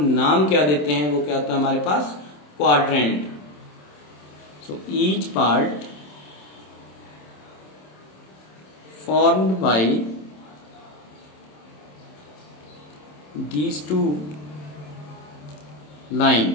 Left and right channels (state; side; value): late; right; 27 ms